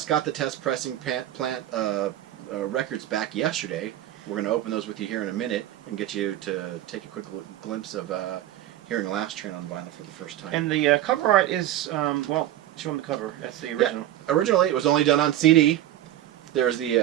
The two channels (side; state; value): left; quieter; 13.1 dB